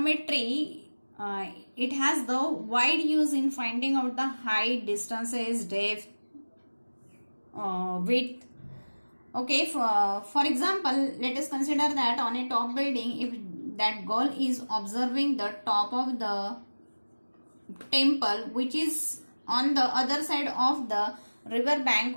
it has the wide use in finding out the height, distances, depth, width. Okay, for example, let us consider that on a top building, if that girl is observing the top of the temple, which is on the other side of the river bank.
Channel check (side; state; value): both; inverted; correlation -1.00